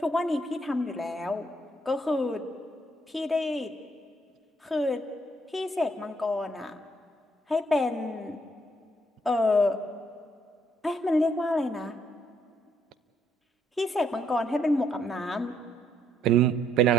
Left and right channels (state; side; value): normal; both; correlation 0.71